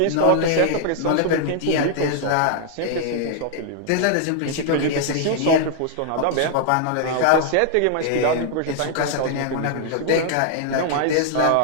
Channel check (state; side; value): different; both; correlation 0.00